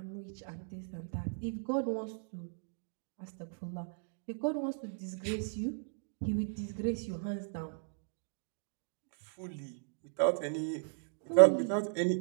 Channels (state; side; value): silent; left; digital silence